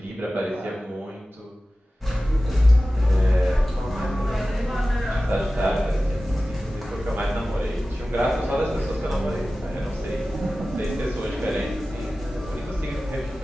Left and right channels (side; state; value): both; normal; correlation 0.96